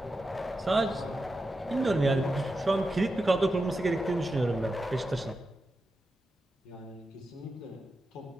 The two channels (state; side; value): normal; both; correlation 0.90